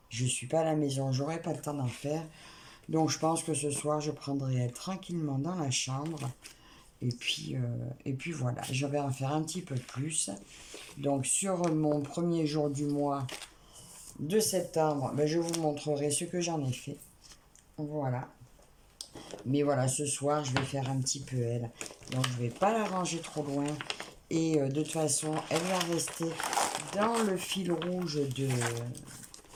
Je ne suis pas à la maison, j'aurai pas le temps d'en faire. Donc, je pense que ce soir, je prendrai tranquillement dans la chambre. Et puis voilà, je vais en faire un petit peu plus. Donc, sur mon premier jour du mois de septembre, ben, je vous montrerai ce que j'en ai fait. Voilà. Mais voilà, ce soir, je vais faire un petit peu elle. Donc, je ne vais pas la ranger trop loin. Et de toute façon, elle va rester dans le fil rouge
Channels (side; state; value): both; identical; correlation 1.00